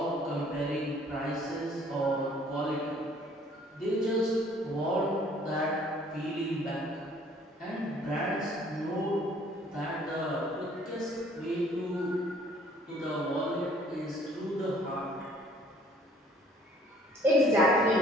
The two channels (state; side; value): normal; both; correlation 0.57